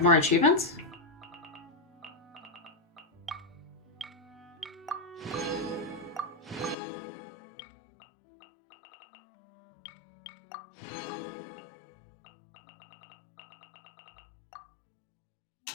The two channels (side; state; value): right; drops out; at 6.8 s